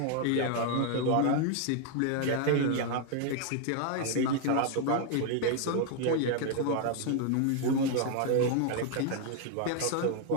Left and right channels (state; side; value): different; both; correlation 0.00